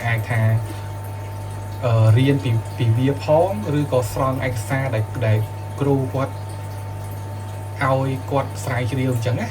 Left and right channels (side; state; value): both; identical; correlation 1.00